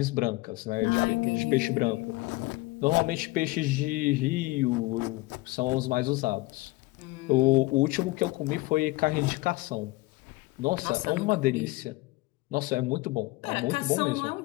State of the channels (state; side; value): quieter; right; 21.3 dB